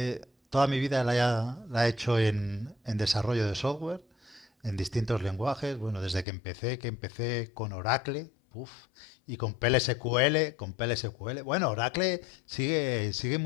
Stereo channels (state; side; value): drops out; right; at 6.2 s